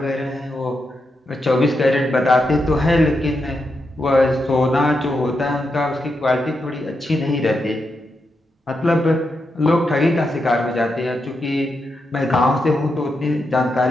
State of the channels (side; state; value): both; normal; correlation 0.85